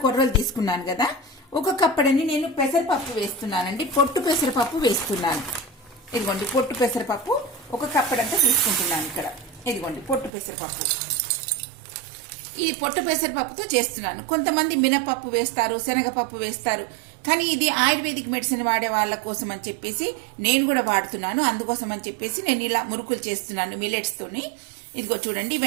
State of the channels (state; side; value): drops out; left; at 10.3 s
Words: కొర్రలు తీసుకున్నాను కదా, 1 కప్పడని నేను పెసరపప్పు వేస్తున్నానండి. పొట్టు పెసరపప్పు వేస్తున్నాను. ఇదిగోండి పొట్టు పెసరపప్పు 1 కప్పడంతా తీసుకుంటున్నాను. ఇక్కడ ఇదిగోండి పొట్టు పెసరపప్పు. ఈ పొట్టు పెసరపప్పుతో చేస్తున్నాను. కొంతమంది మినపప్పు వేస్తారు, శనగపప్పు వేస్తారు. కానీ ఇది ఆయుర్వేదిక్ మెడిసిన్ వాడే వాళ్ళ కోసం అని చెప్పేసి నేను కూడా వాడుతున్నాను. అందుకోసం అని చెప్పేసి నేను ఇలా మురుకులు చేస్తున్నాను మిల్లెట్స్ తోని. ఇదిగో చూడండి,